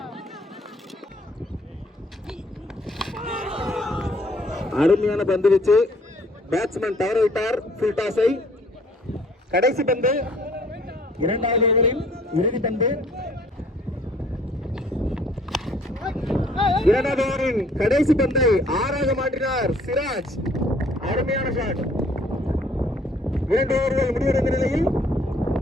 அருமையான பந்து வச்சு பேட்ஸ்மேன் தவற விட்டார் ஃபுல் டாஸை. கடைசி பந்து, இரண்டாவது ஓவரில் இறுதி பந்து. இரண்டாவது ஓவரின் கடைசி பந்தை 6ஆக மாற்றினார் சிராஜ். அருமையான ஷாட். 2 ஓவர்கள் முடிவடைந்த நிலையில்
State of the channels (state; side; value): normal; both; correlation 0.59